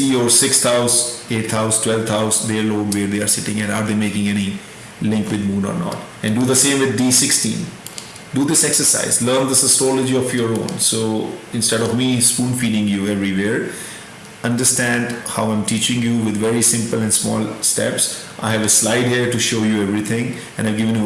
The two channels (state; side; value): identical; both; correlation 1.00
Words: your 6th house, 8th house, 12th house, their lord, where they are sitting, and are they making any link with Moon or not. And do the same with D16. Do this exercise, learn this astrology of your own. So instead of me spoon feeding you everywhere, understand how I'm teaching you with very simple and small steps. I have a slide here to show you everything, and I've given you